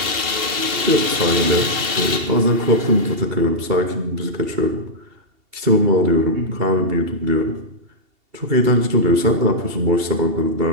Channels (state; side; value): late; left; 2.7 ms